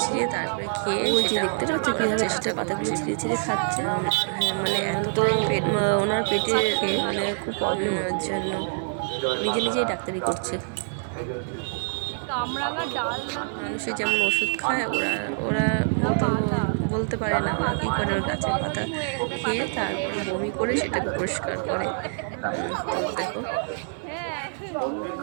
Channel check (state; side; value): silent; left; 57 dB below the other